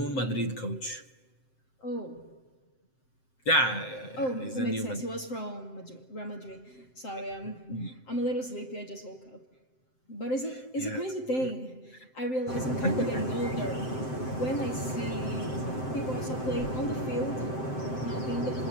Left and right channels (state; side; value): late; right; 7.7 ms